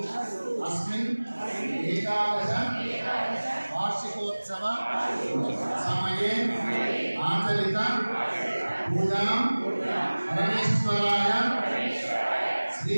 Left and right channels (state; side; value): inverted; both; correlation -1.00